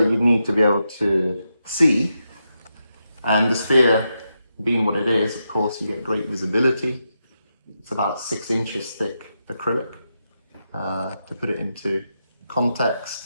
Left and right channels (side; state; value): both; inverted; correlation -0.86